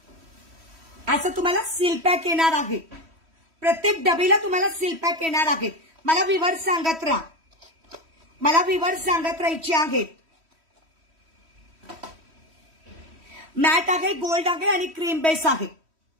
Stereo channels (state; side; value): late; left; 3.1 ms